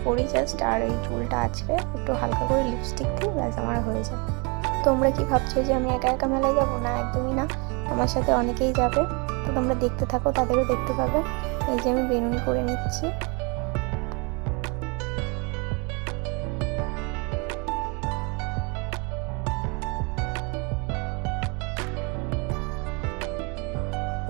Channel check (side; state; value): left; quieter; 31.3 dB